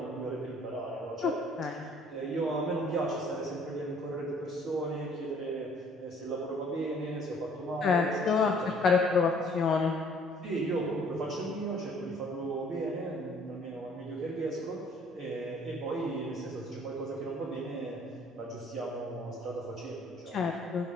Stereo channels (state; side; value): normal; both; correlation 0.58